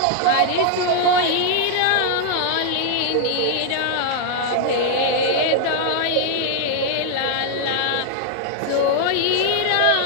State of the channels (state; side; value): different; both; correlation 0.00